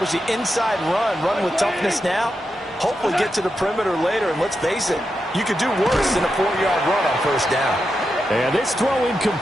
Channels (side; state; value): both; normal; correlation 0.87